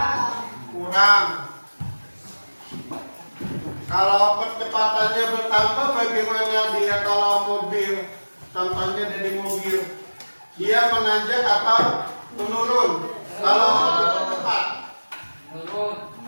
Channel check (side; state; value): both; inverted; correlation -1.00